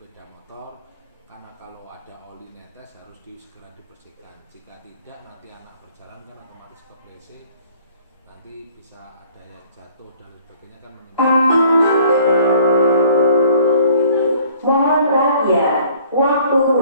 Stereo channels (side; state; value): both; inverted; correlation -0.56